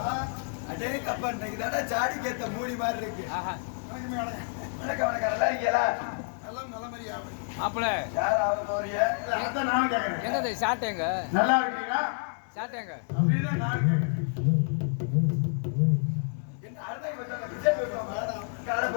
கப்பா இன்னைக்கு தானே சாடி கேத்த மூடி மாதிரி இருக்கு. வணக்கம் வணக்கம். நல்லா இருக்கீங்களா? எல்லாம் நல்ல மாதிரி ஆகும். மாப்பிள யார் ஆக போறீங்க? அதான் நானும் கேட்கறேன். என்னது ஷார்ட்டேங்க? நல்லா இருக்கீங்களா? ஷார்ட்டேங்க. அப்படின்னா நானும் கேட்கறேன். என்ன அர்த்தம் கொஞ்சம் விஜய் போடுறோம். கால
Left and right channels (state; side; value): silent; right; 59 dB below the other